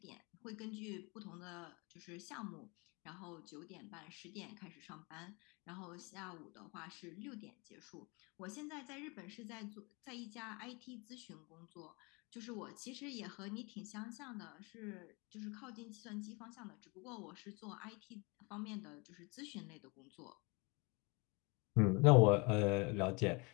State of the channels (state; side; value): quieter; right; 28.8 dB